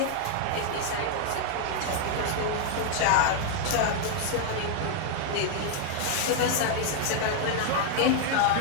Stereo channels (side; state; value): both; different; correlation 0.00